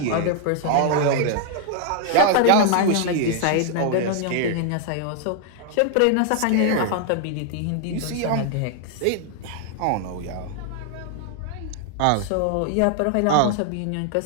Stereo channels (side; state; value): both; different; correlation 0.00